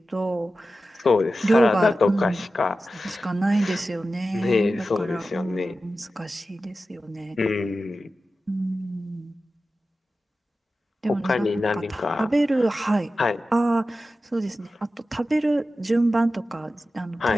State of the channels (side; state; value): both; normal; correlation 0.93